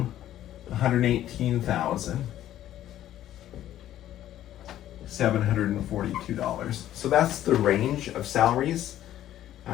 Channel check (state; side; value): quieter; right; 12.5 dB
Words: $118,742. So that's the range of salaries.